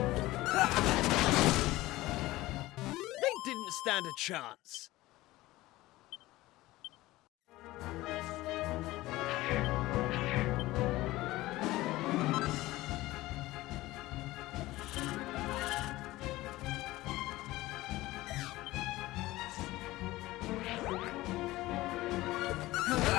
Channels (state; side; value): quieter; right; 18.1 dB